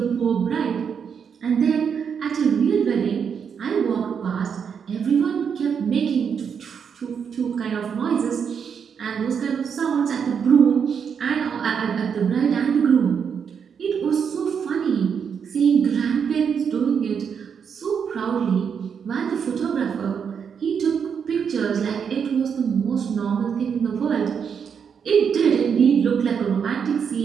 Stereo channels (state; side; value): quieter; left; 7.0 dB